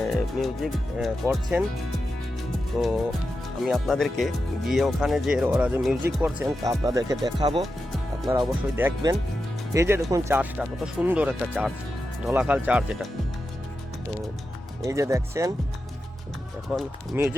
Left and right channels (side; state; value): both; normal; correlation 0.89